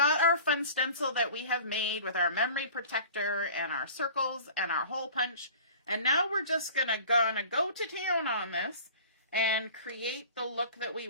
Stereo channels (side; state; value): both; inverted; correlation -0.43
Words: our fun stencil that we have made with our memory protector and our circles and our hole punch. And now we're just gonna go to town on this and create the look that we